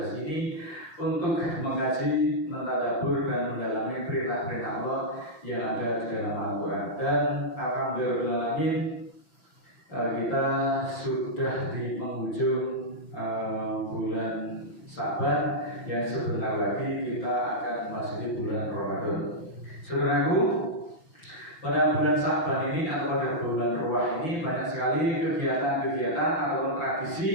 ini untuk mengkaji, mentadabbur dan mendalami perintah-perintah Allah yang ada di dalam Al-Quran. Dan alhamdulillah kita sudah di penghujung bulan Sa'ban yang sebentar lagi kita akan memasuki bulan Ramadan. Saudaraku, pada bulan Sa'ban ini atau pada bulan Ruwah ini banyak sekali kegiatan-kegiatan atau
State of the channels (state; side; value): late; right; 5.9 ms